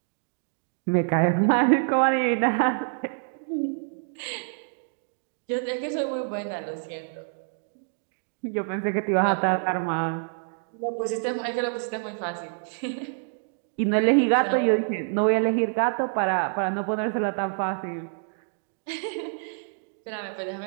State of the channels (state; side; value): silent; left; digital silence